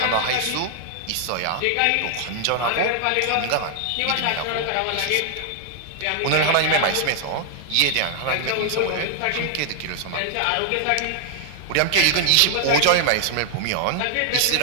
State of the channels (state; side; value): different; both; correlation 0.00